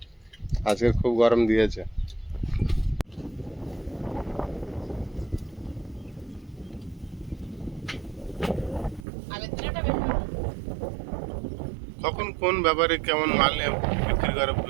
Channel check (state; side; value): drops out; left; at 9.1 s